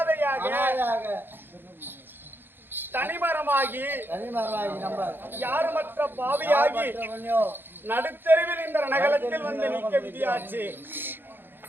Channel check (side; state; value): left; late; 0.099 ms